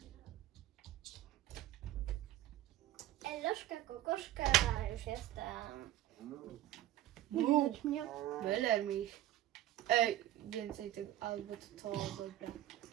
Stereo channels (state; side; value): quieter; left; 13.7 dB